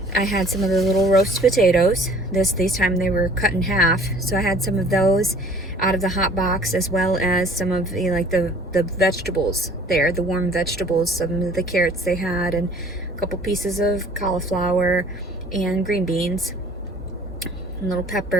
had some of the little roast potatoes. This time they were cut in half. So I had some of those out of the hot box, as well as some of the vegetables there, the warm vegetables, some of the carrots they had, and a couple pieces of cauliflower and green beans. Little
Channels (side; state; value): both; normal; correlation 0.52